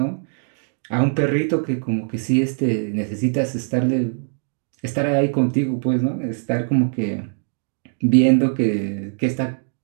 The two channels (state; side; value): silent; left; digital silence